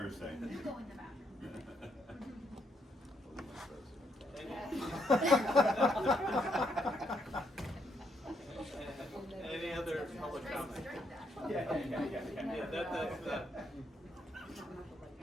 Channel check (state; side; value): normal; both; correlation 0.75